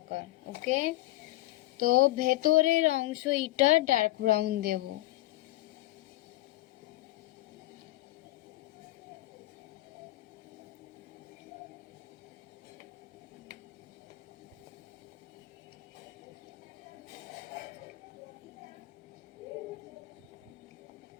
কালার। ওকে, তো ভেতরের অংশ এটা ডার্ক ব্রাউন দেব।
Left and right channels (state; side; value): quieter; right; 17.4 dB